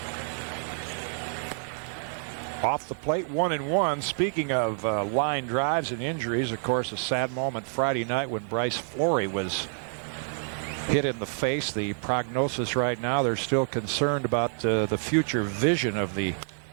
Off the plate, 1-1. Speaking of line drives and injuries, of course, a sad moment Friday night when Bryce Flory was hit in the face. The prognosis right now, they're still concerned about the future vision of the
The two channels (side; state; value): left; silent; 57 dB below the other